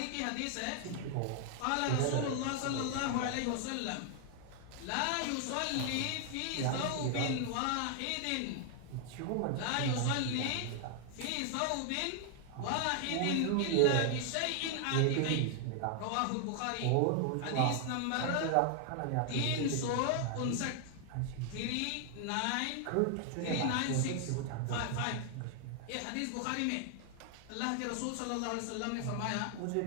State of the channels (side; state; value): both; different; correlation 0.00